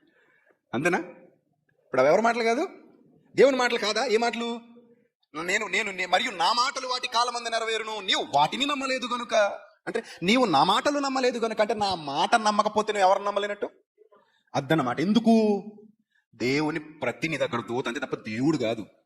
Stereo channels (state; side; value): identical; both; correlation 1.00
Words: అంతేనా? ఇప్పుడు అవి ఎవరి మాటలు కాదు, దేవుని మాటలు కాదా? ఏ మాటలు? నేను మరియు నా మాటలు వాటి కాలమందు నెరవేరును, నీవు వాటిని నమ్మలేదు గనుక. అంటే నీవు నా మాటలు నమ్మలేదు గనుక, అంటే నా మాట నమ్మకపోతే నువ్వు ఎవరు నమ్మలేనట్టు అద్దన్నమాట. ఎందుకు? దేవుని ప్రతినిధి అక్కడ దూత అంతే తప్ప దేవుడు కాదు.